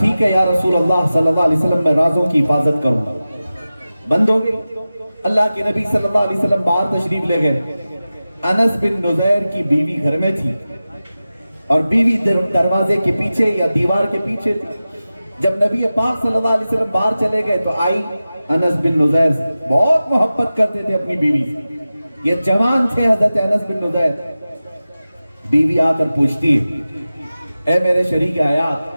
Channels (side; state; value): both; inverted; correlation -0.95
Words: ہے یا رسول اللہ صلی اللہ علیہ وسلم، میں رازوں کی حفاظت کروں گا۔ بند ہو گئی۔ اللہ کے نبی صلی اللہ علیہ وسلم باہر تشریف لے گئے۔ انس بن نضیر کی بیوی گھر میں تھی اور بیوی دروازے کے پیچھے یا دیوار کے پیچھے تھی۔ جب نبی پاک صلی اللہ علیہ وسلم باہر چلے گئے تو آئی انس بن نضیر سے، بہت محبت کرتے تھے اپنی بیوی سے، یہ جوان تھے حضرت انس بن نضیر۔ بیوی آ کر پوچھتی ہے اے میرے شریک